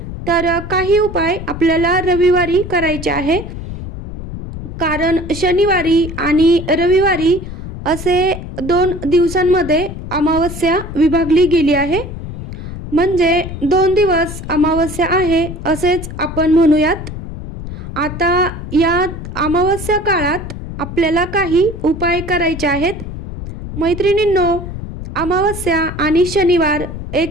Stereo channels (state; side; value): noise; left; rumble, 9 dB below the sound